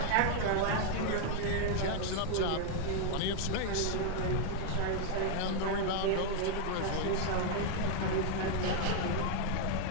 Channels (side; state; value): both; different; correlation 0.00